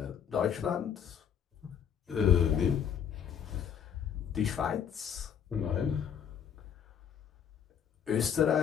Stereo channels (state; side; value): quieter; right; 8.3 dB